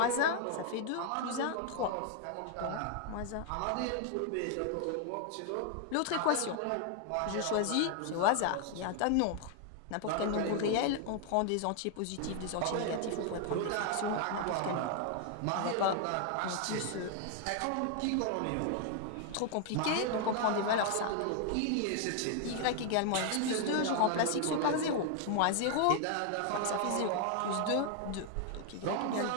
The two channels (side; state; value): both; different; correlation 0.00